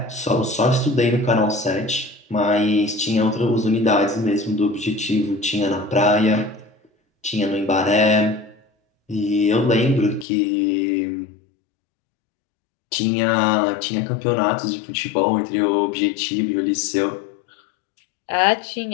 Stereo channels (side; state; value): right; drops out; at 10.2 s